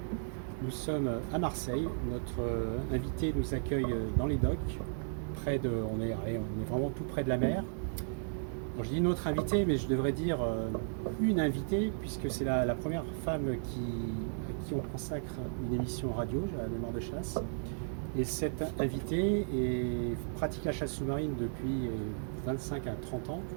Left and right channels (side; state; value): left; silent; digital silence